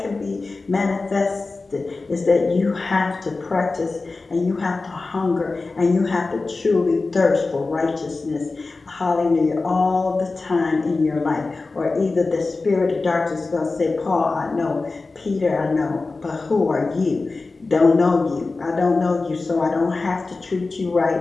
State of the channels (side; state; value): right; quieter; 3.7 dB